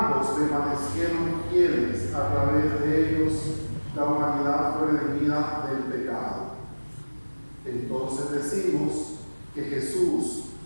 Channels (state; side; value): inverted; both; correlation -1.00